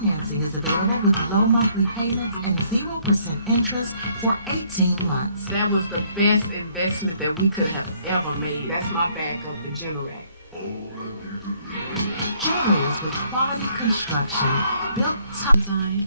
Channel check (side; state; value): both; inverted; correlation -0.66